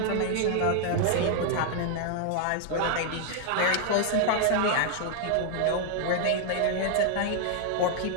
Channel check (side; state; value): both; different; correlation 0.00